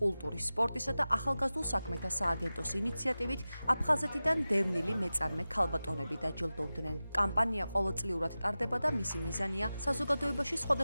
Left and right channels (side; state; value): both; inverted; correlation -0.95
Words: სპორტისა და ახალგაზრდულ საქმეთა სააგენტოს ინიციატივით აფხაზეთიდან დევნილი მეწარმე ქალბატონები დაჯილდოვდნენ. კამპანია ყოველწლიურად ტარდება და მისი მიზანია საზოგადოებაში